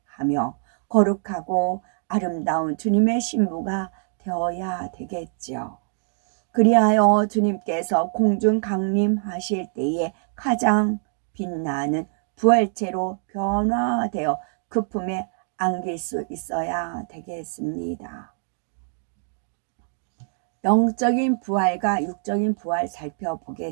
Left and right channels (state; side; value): silent; left; digital silence